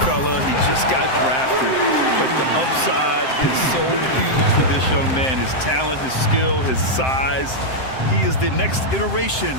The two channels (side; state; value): right; late; 7.7 ms